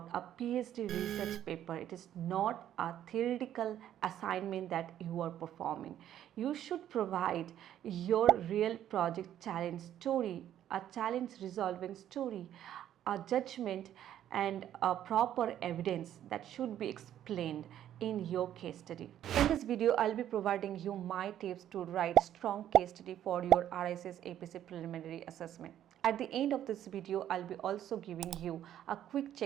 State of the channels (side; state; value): left; quieter; 11.2 dB